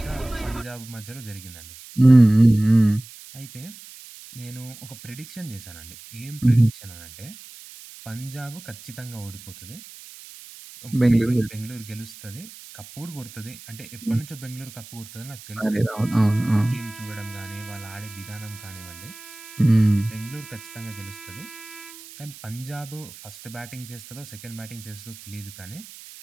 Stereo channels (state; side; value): noise; right; hiss, 17 dB below the sound